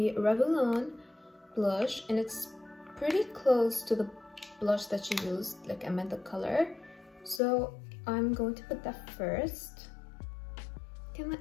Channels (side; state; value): right; drops out; at 7.4 s